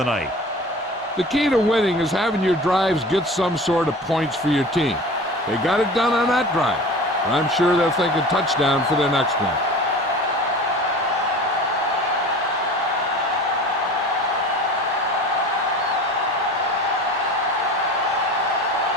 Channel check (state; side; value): normal; both; correlation 0.38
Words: night. The key to winning is having your drives get some sort of points for your team. They got it done on that drive. I'm sure they're thinking touchdown for their next one.